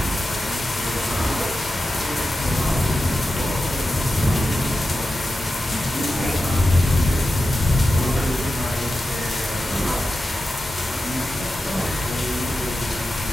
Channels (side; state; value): both; normal; correlation 0.91